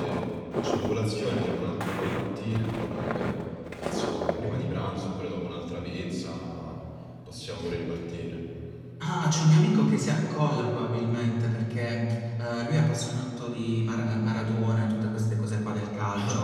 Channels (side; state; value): both; identical; correlation 1.00